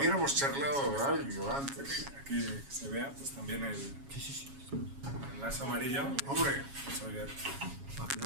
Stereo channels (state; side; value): late; left; 7.2 ms